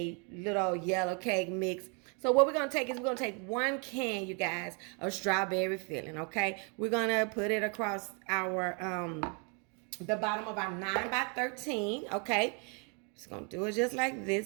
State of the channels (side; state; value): left; quieter; 35.8 dB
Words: little yellow cake mix. So what we're going to take is we're going to take 1 can, you guys, of strawberry filling, okay? We're going to put it across our, the bottom of our 9 by 13, okay? Just going to do it just like